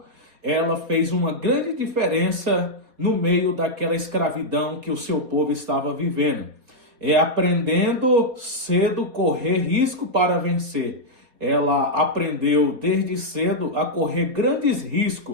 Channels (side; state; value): left; late; 4.1 ms